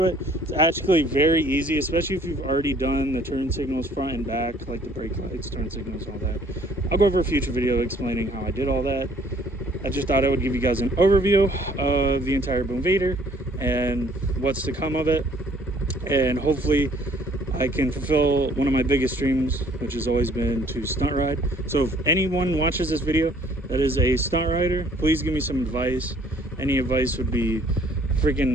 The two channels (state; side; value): normal; both; correlation 0.59